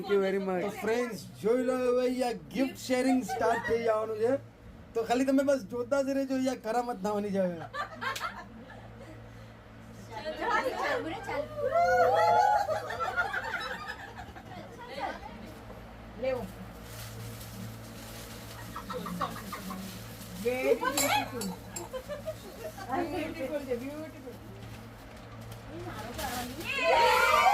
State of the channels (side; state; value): both; identical; correlation 1.00